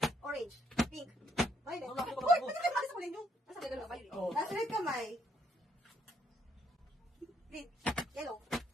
Orange. Pink. Violet. Wala ko, Uy, wala ko. pati kayo sa kulay nyo. Nasa gano'n kamay. Oh. Nasa red kamay. Green. Yellow.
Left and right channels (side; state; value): both; normal; correlation 0.71